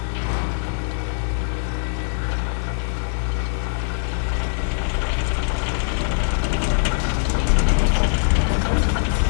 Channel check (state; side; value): silent; right; digital silence